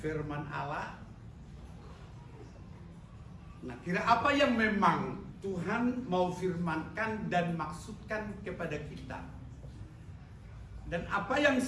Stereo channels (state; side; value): identical; both; correlation 1.00